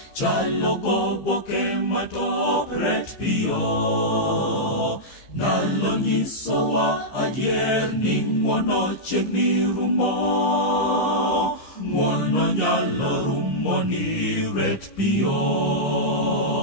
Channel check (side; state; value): right; late; 15 ms